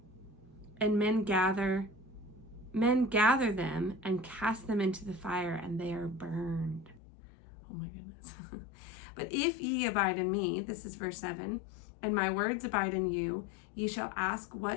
And men gather them, and cast them into the fire, and they are burned. Oh my goodness. But if ye abide in me, this is verse 7, and my words abide in you, ye shall ask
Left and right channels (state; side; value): drops out; right; at 7.0 s